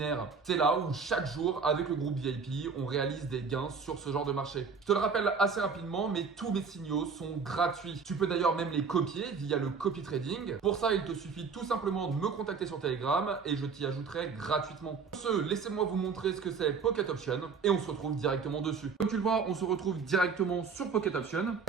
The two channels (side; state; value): left; quieter; 5.4 dB